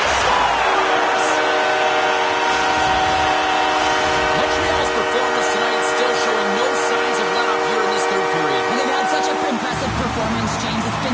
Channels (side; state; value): both; identical; correlation 1.00